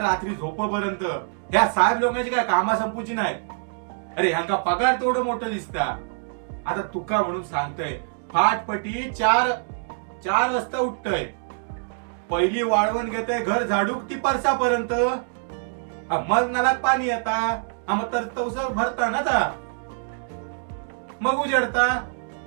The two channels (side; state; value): left; silent; digital silence